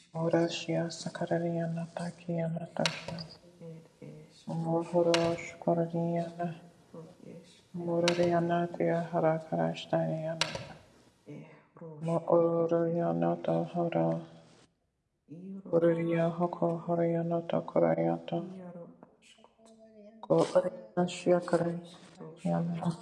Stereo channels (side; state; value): both; identical; correlation 1.00